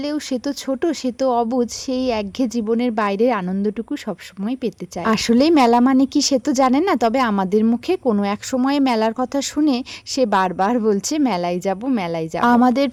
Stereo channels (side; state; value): both; identical; correlation 1.00